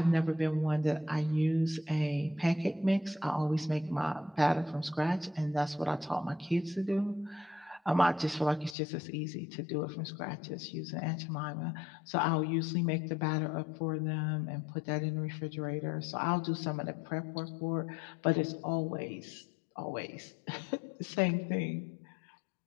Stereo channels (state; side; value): drops out; right; at 8.8 s